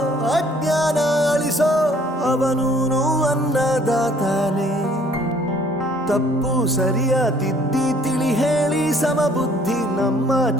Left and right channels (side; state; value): both; normal; correlation 0.58